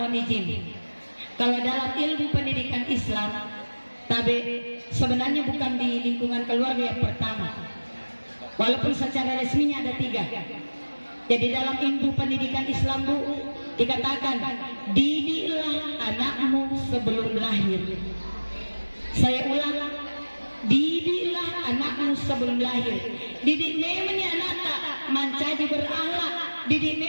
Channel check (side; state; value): both; inverted; correlation -1.00